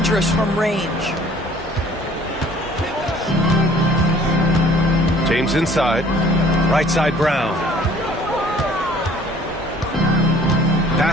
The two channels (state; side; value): normal; both; correlation 0.54